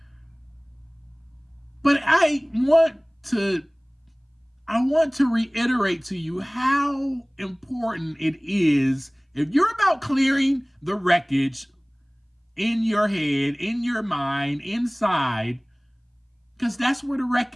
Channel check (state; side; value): identical; both; correlation 1.00